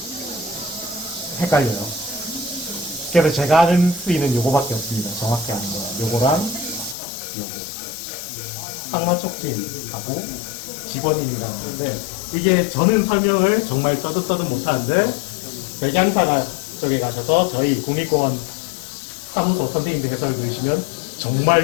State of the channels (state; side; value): drops out; right; at 7.0 s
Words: 헷갈려요. 그래서 제가 아는 스윙은 요거밖에 없습니다. 정확히 아는 거는 요거랑 요거. 항마촉진하고 직원인이라는 건데 이게 저는 설명을 정말 떠듬떠듬 못하는데 백양사가 쪽에 가셔서 저희 국립공원 사무소 선생님들 해설 들으시면